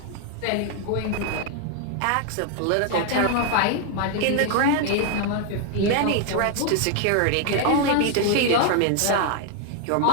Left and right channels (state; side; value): different; both; correlation 0.00